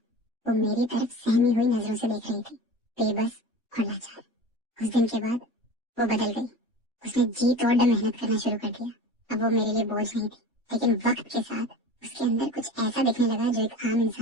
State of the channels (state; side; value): normal; both; correlation 0.35